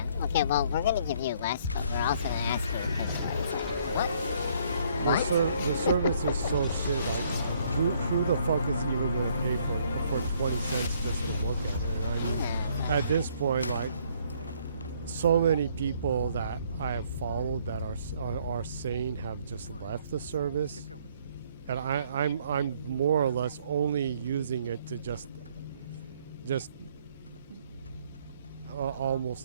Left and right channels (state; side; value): inverted; both; correlation -0.65